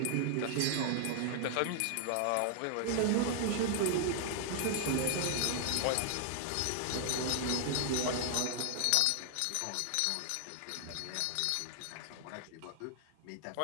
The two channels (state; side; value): different; both; correlation 0.00